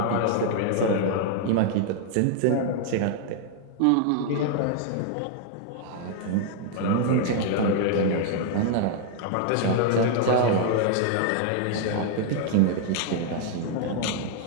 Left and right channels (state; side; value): different; both; correlation 0.00